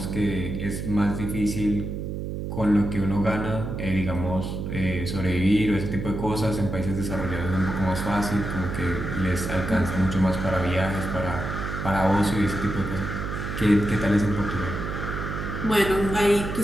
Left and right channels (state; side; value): noise; right; hum, 5 dB below the sound